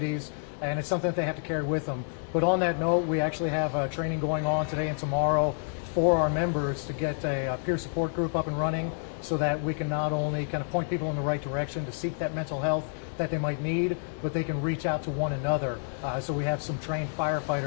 and it's something that they have to carry with them. But on that note, we actually have training going on today and tomorrow for our members to get a peer support group up and running, so that we can not only kind of point people in the right direction to seek that mental health that they might need, but they can reach out to one another. So we have some trained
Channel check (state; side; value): silent; right; digital silence